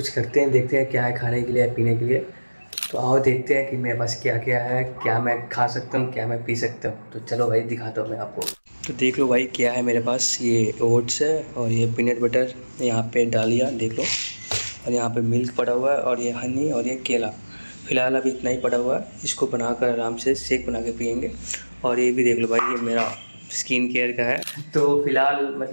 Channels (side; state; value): both; inverted; correlation -1.00